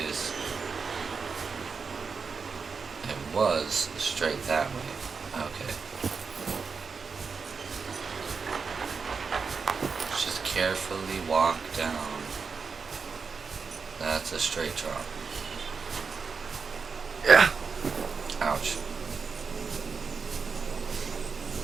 was straight that way. Okay. Just carefully walk down. That's a straight drop. Yeah. Ouch.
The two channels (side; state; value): left; quieter; 5.2 dB